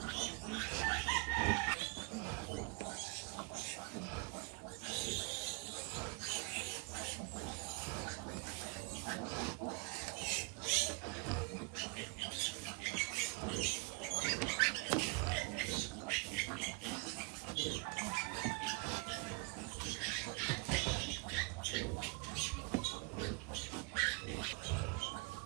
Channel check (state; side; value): quieter; left; 27.4 dB